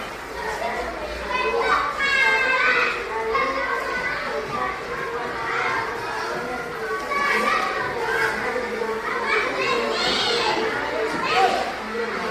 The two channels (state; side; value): identical; both; correlation 1.00